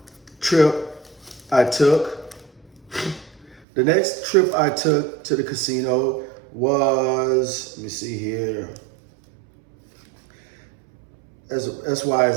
trip I took, to the casino was, let me see here. That's why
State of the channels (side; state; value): left; drops out; at 3.7 s